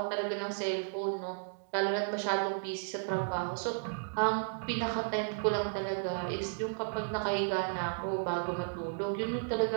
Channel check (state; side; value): silent; left; digital silence